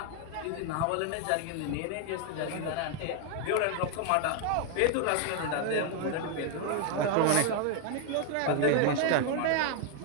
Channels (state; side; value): different; both; correlation 0.01